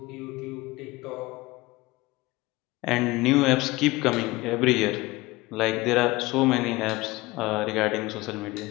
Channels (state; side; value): quieter; right; 20.8 dB